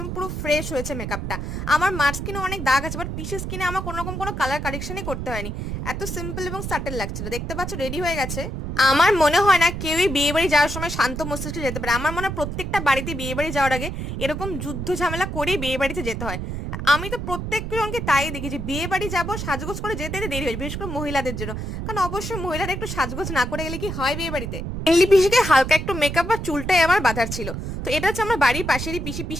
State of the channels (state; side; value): noise; right; rumble, 5 dB below the sound